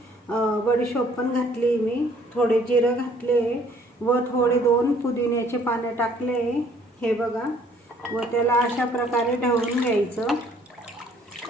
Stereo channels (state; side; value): normal; both; correlation 0.60